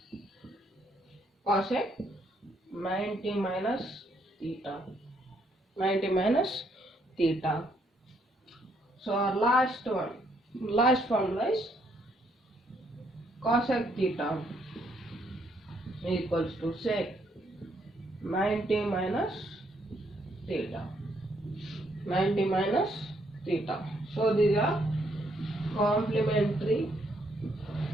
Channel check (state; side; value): normal; both; correlation 0.72